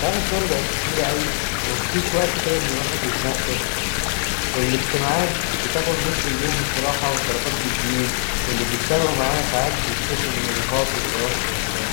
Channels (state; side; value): silent; right; 64 dB below the other